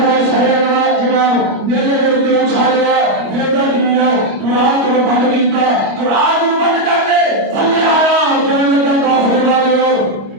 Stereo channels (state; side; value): late; left; 25 ms